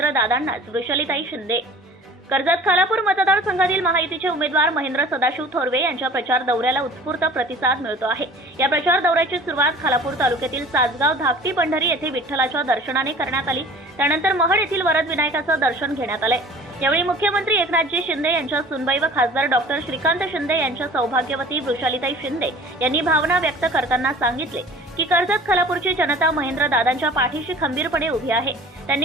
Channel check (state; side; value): normal; both; correlation 0.46